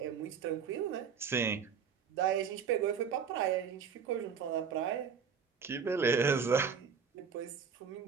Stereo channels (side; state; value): left; quieter; 6.6 dB